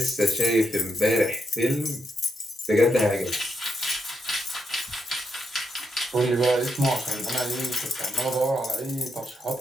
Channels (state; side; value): normal; both; correlation 0.82